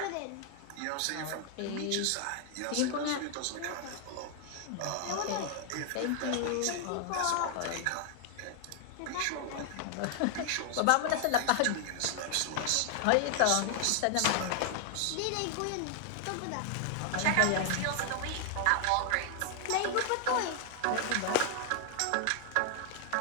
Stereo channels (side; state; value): both; different; correlation 0.00